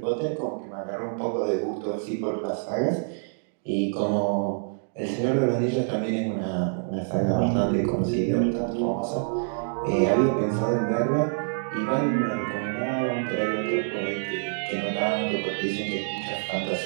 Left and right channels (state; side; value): silent; left; digital silence